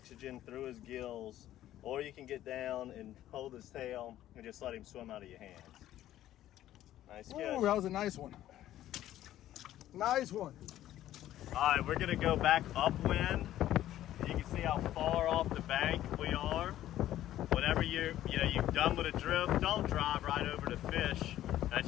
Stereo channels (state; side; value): quieter; right; 13.1 dB